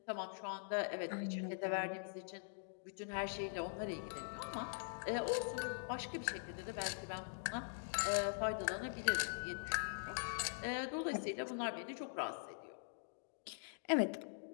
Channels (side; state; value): right; silent; digital silence